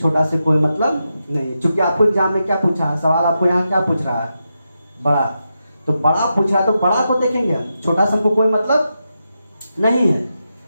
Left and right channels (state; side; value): inverted; both; correlation -0.87